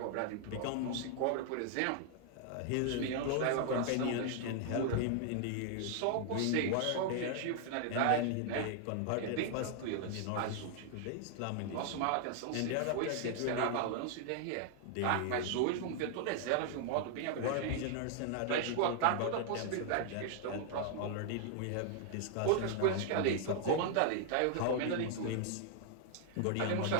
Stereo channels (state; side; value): different; both; correlation 0.00